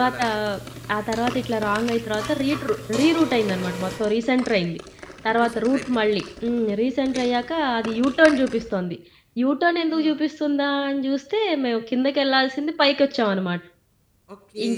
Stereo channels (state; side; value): identical; both; correlation 1.00